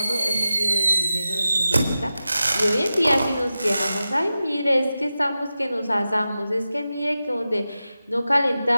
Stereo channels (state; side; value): inverted; both; correlation -0.93